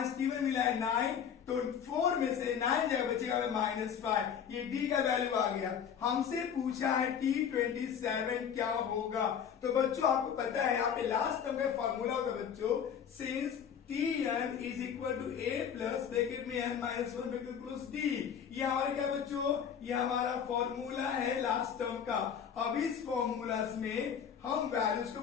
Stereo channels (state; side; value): quieter; right; 8.0 dB